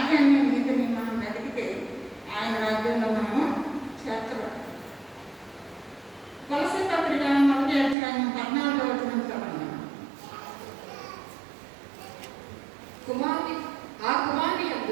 నీతిని మనం వెతికితే ఆయన రాజ్యంలో మనము చేర్చబడతాం. కొలసీ పత్రిక 1వ అధ్యాయం 14వ వచనం చదవండి. ఆ కుమారుని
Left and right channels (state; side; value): drops out; left; at 8.0 s